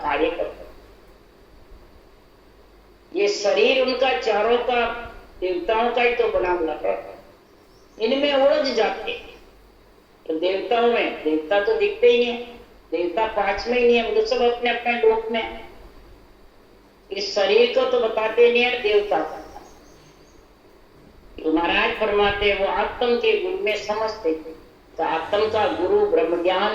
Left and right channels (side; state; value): both; identical; correlation 1.00